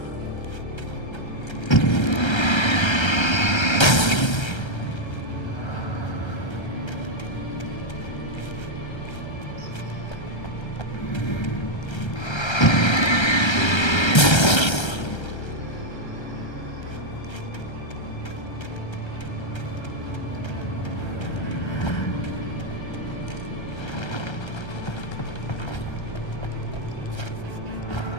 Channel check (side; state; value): right; late; 1.3 ms